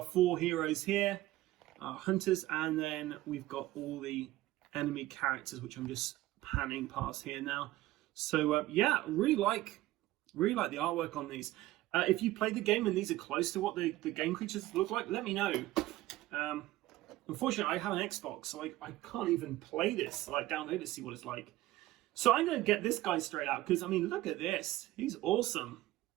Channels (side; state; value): left; quieter; 16.4 dB